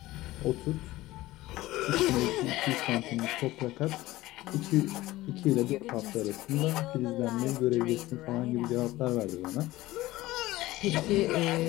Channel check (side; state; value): right; quieter; 17.7 dB